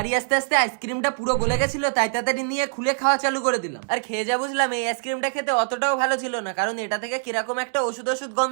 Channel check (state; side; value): silent; left; digital silence